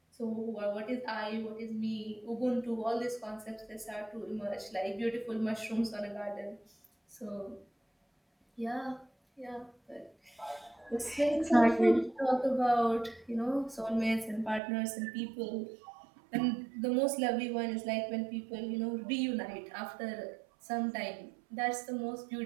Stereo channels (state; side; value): drops out; left; at 14.6 s